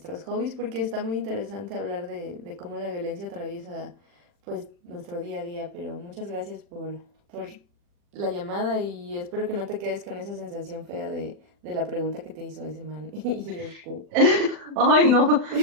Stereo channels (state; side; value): late; left; 40 ms